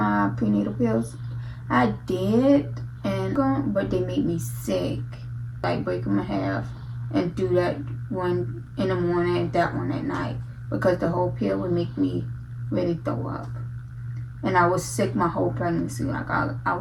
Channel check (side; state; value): both; identical; correlation 1.00